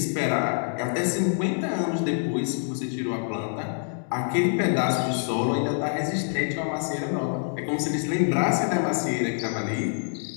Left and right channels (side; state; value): right; silent; digital silence